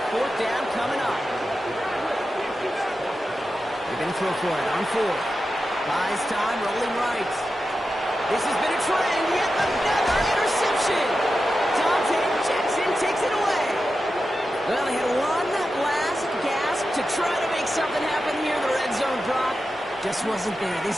4th down coming up. They're going to throw for it on 4. Buys time, rolling right. This has been a trend, yet another interception. Dante Jackson takes it away. Well, they had one last gasp to try to make something happen here in the red zone, Brock. Just wasn't there.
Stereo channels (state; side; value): normal; both; correlation 0.91